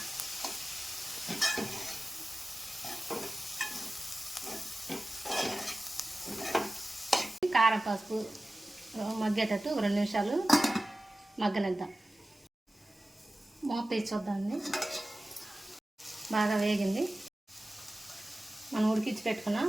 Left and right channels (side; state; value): both; normal; correlation 0.96